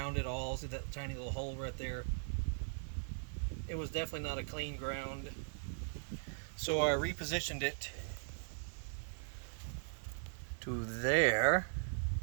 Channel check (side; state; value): left; silent; 51 dB below the other